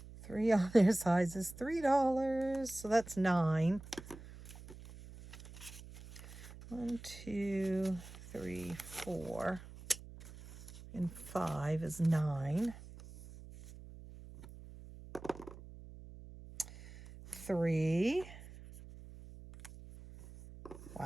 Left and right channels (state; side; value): noise; right; hum, 16 dB below the sound